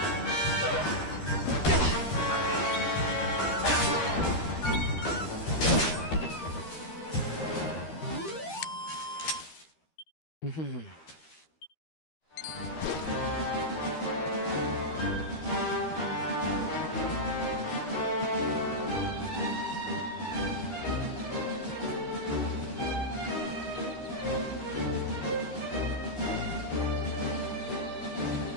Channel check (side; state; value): right; late; 13 ms